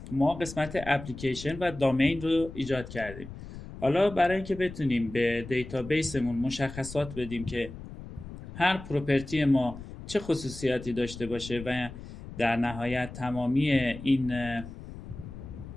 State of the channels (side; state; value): left; noise; rumble, 13 dB below the sound